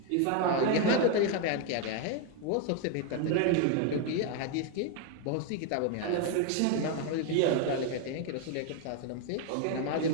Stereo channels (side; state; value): both; different; correlation 0.01